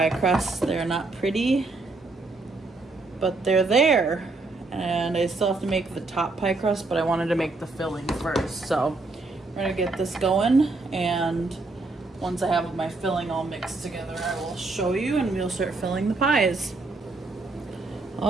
crusts. They're not pretty, but they're there. And I still have to make the top pie crust, but I wanted to make the filling first. So we're gonna get this going, and once I have my filling all mixed together, I will show you, and we'll start filling the pies.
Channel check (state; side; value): quieter; left; 3.4 dB